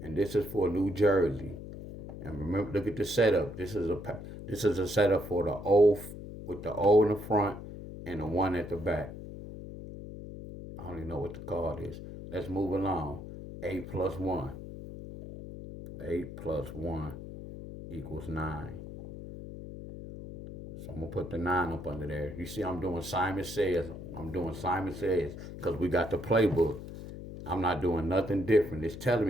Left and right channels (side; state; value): left; noise; hum, 11 dB below the sound